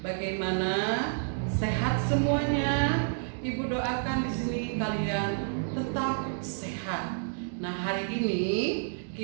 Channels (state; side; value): silent; left; digital silence